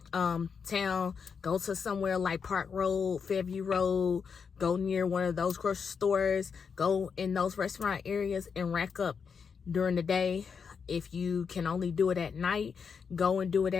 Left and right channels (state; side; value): quieter; right; 6.1 dB